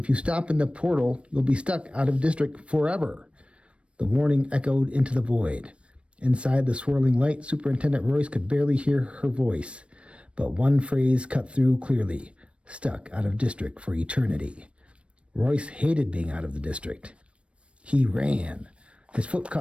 you stop in the portal, you'll be stuck out of district forever." The warning echoed into the void. Inside the swirling light, Superintendent Royce could barely hear her voice, but one phrase cut through clearly: stuck out of district for eternity. Royce hated being out of the district. He ran. His foot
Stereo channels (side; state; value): left; late; 0.060 ms